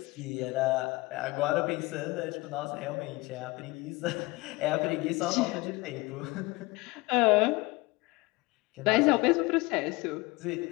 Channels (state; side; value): quieter; right; 23.0 dB